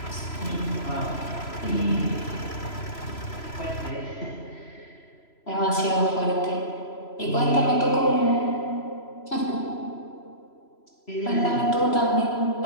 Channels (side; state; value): right; late; 3.0 ms